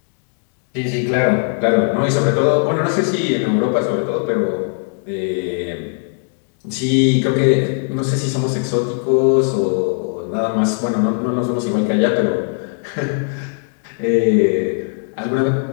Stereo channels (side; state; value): right; silent; 64 dB below the other